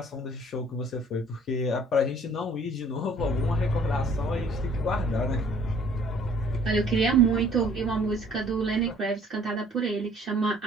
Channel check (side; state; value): both; normal; correlation 0.56